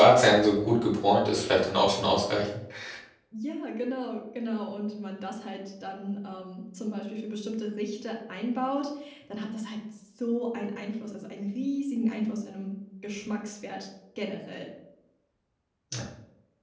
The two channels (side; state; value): both; identical; correlation 1.00